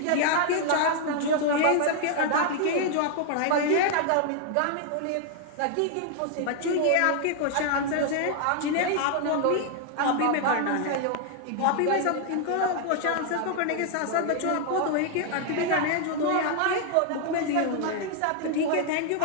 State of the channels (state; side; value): different; both; correlation 0.00